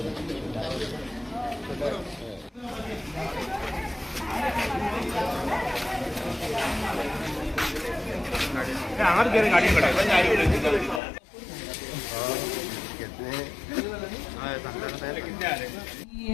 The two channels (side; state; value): right; drops out; at 11.0 s